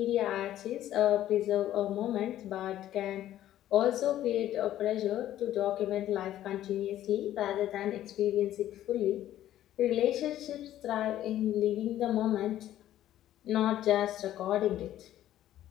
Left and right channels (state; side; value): quieter; right; 12.7 dB